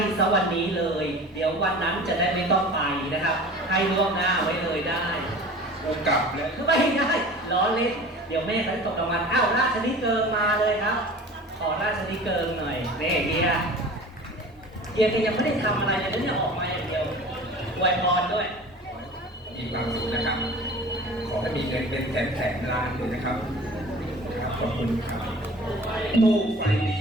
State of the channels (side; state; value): both; normal; correlation 0.41